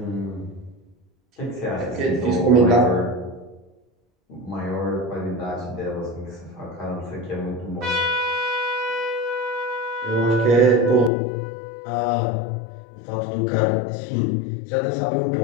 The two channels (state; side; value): drops out; right; at 11.1 s